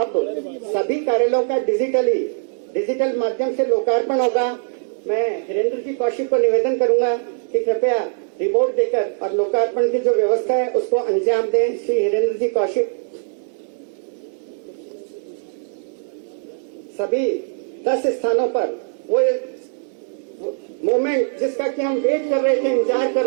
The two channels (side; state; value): left; silent; 65 dB below the other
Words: सभी कार्यालयों का डिजिटल माध्यम से लोकार्पण होगा। मैं हिरेंद्र जी कौशिक को निवेदन करूंगा कि कृपया रिपोर्ट देकर और लोकार्पण की जो व्यवस्था है उसको अंजाम दें। श्री हिरेंद्र जी कौशिक। सभी 10 स्थानों पर वो मोमेंट जिसका कि हम वेट कर रहे थे, इंतजार कर